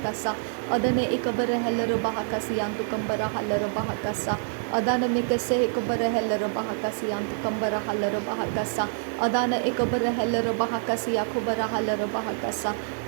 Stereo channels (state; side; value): silent; left; 61 dB below the other